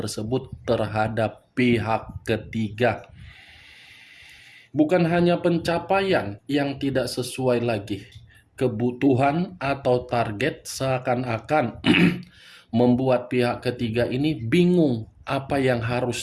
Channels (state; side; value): identical; both; correlation 1.00